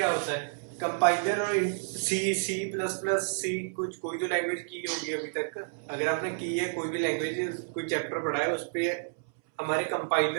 होता है? कंपाइलर और सी प्लस प्लस सी, कुछ कोई तो लैंग्वेज की होगी अभी तक। अगर आपने की है कोई भी लैंग्वेज, कोई चैप्टर पढ़ा है, उस पे हमारे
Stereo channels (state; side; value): silent; left; 58 dB below the other